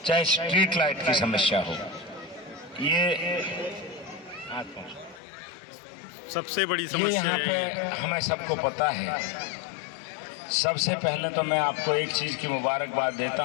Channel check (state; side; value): drops out; right; at 5.2 s